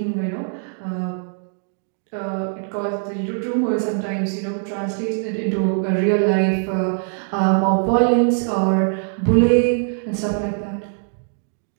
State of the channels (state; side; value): silent; left; 64 dB below the other